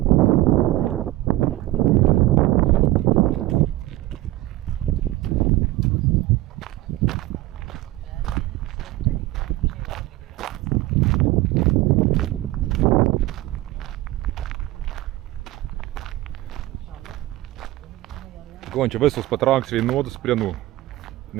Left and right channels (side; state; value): left; quieter; 16.8 dB